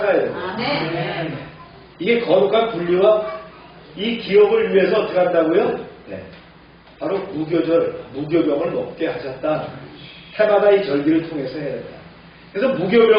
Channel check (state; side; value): identical; both; correlation 1.00